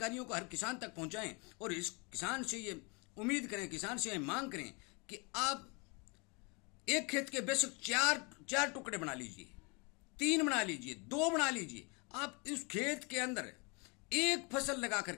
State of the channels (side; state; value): right; quieter; 30.9 dB